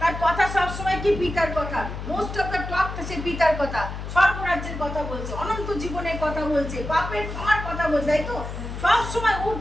তার কথা সবসময় কি পিতার কথা, মোস্ট অফ দ্য টক সে পিতার কথা, স্বর্গরাজ্যের কথা বলছে, অনন্ত জীবনের কথা বলছে, পাপের ক্ষমার কথা বলছে, তাই তো সবসময়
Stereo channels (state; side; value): noise; left; hum, 7 dB below the sound